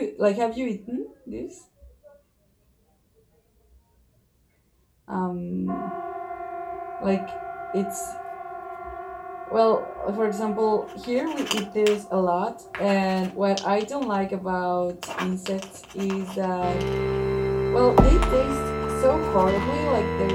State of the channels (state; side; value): identical; both; correlation 1.00